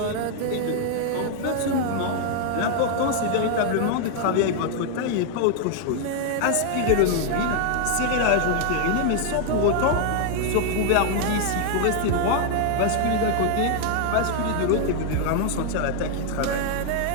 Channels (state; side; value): different; both; correlation 0.00